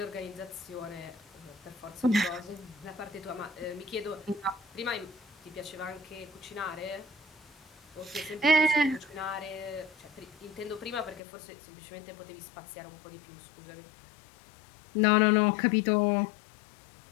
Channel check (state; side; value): drops out; right; at 11.2 s